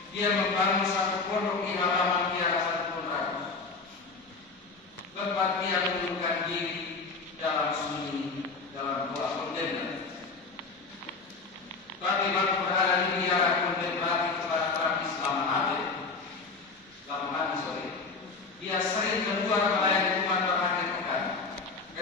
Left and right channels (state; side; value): quieter; right; 4.2 dB